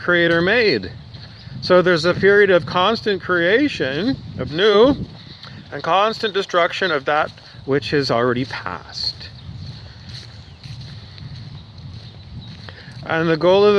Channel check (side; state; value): both; identical; correlation 1.00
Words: made. So there's a period of constant creation of new and constant destruction of that which has already passed. And the goal of